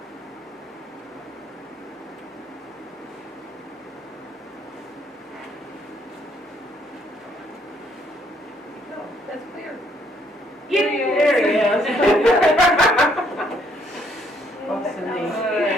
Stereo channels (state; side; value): normal; both; correlation 0.68